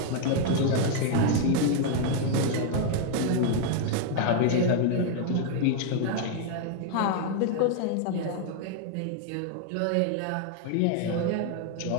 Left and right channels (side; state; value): both; different; correlation 0.00